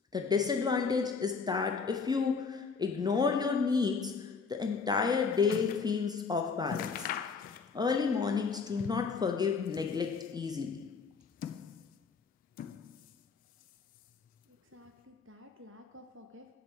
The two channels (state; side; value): quieter; right; 5.2 dB